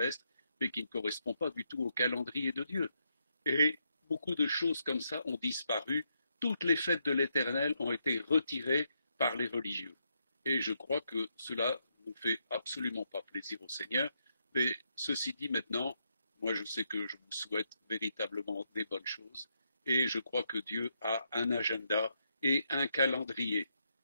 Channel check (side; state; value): both; inverted; correlation -0.79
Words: mais qui ne correspond pas du tout au calendrier de Dieu. Et beaucoup de choses comme ça ont disparu. Toutes les fêtes de l'Éternel ont été retirées par les religieux. Et je crois que cela ne fait absolument pas plaisir au Seigneur. Mais ceci dit maintenant, moi je sais que je vous souhaite véritablement des bonnes choses. Et je crois que Dieu a un agenda et un calendrier.